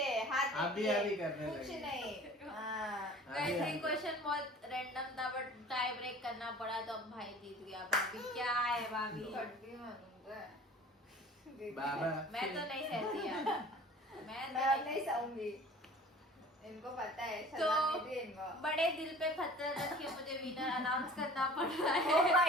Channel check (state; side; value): normal; both; correlation 0.45